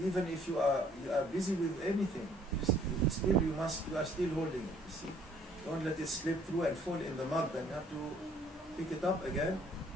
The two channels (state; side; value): normal; both; correlation 0.60